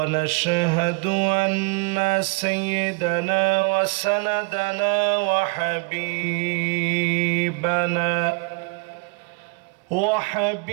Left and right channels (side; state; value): left; quieter; 32.0 dB